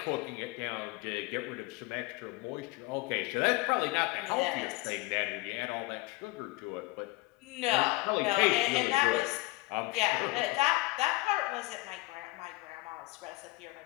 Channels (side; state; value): right; quieter; 22.2 dB